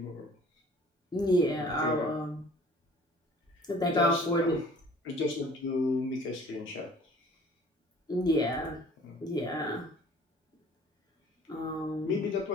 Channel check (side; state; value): both; normal; correlation 0.51